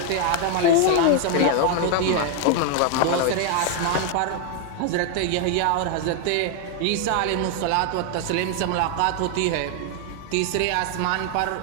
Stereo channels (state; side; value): different; both; correlation 0.01